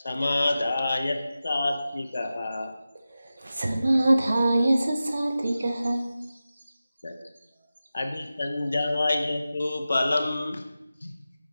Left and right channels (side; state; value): both; inverted; correlation -0.94